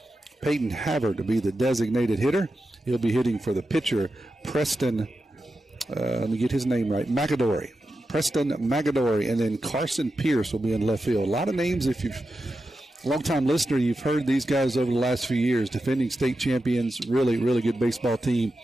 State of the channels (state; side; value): normal; both; correlation 0.90